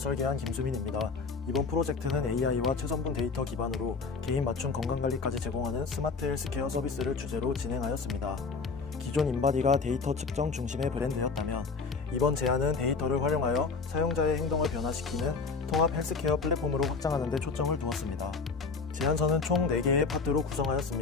김수민입니다. 이번 프로젝트는 AI와 최선분 데이터 기반으로 개인 맞춤 건강관리까지 제공하는 스마트 헬스케어 서비스를 주제로 진행하였습니다. 기존 인바디가 데이터 측정 중심의 브랜드였다면 이번 제안은 데이터를 활용하여 사용자의 행동을 변화시키는 통합 헬스케어 플랫폼으로 확장하는 데 초점을 두었습니다. 제안서는 총 4개의 파트로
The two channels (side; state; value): right; quieter; 4.6 dB